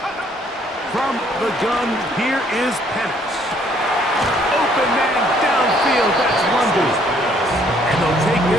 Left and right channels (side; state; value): both; normal; correlation 0.64